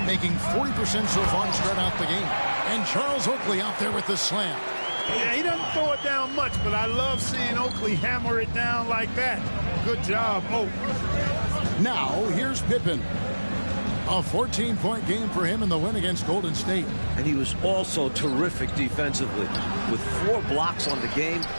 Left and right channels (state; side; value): inverted; both; correlation -1.00